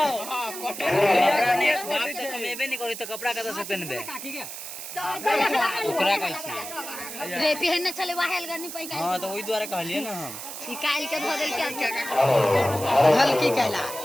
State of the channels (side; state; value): right; noise; hiss, 9 dB below the sound